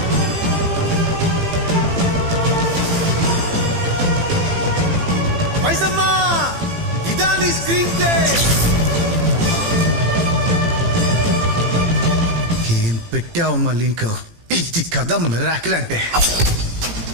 మైసమ్మా, ఇదా నీ స్క్రీన్ ప్లే? ఏం పెట్టావమ్మా లింక్? ఇది కథ మిరాకిల్ అంటే.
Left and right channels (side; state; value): left; late; 18 ms